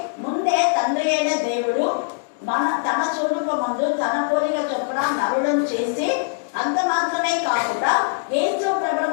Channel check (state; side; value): silent; right; digital silence